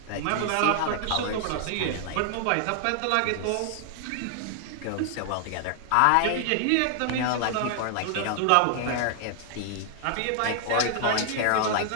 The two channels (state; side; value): different; both; correlation 0.00